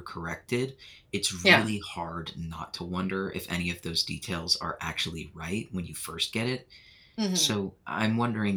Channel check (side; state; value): both; identical; correlation 1.00